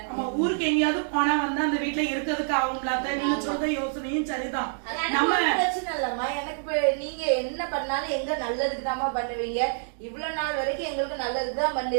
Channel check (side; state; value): left; silent; digital silence